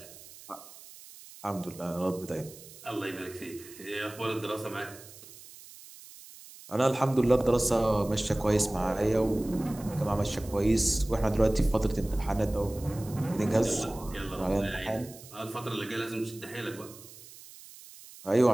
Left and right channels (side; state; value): right; noise; hiss, 18 dB below the sound